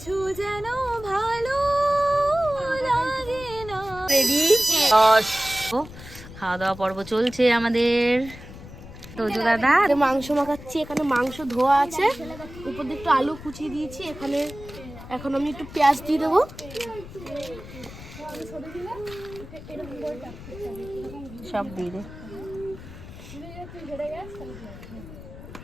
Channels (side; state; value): left; noise; rumble, 15 dB below the sound